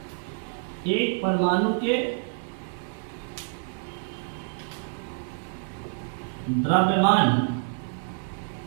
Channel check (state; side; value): silent; left; 60 dB below the other